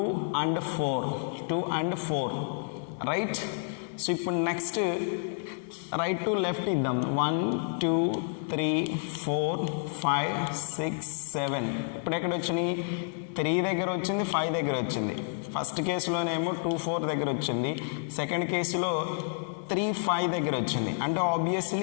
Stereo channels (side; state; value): right; silent; 58 dB below the other